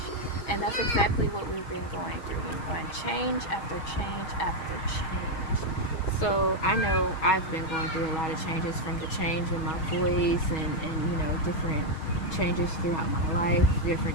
and that's exactly what we've been going through. We're going change after change after change. So I know I've been going through a lot of changes, from the change in my voice and different changes throughout my life,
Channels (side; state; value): right; late; 6.3 ms